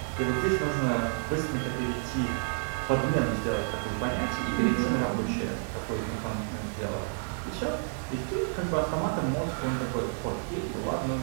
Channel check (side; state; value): left; silent; digital silence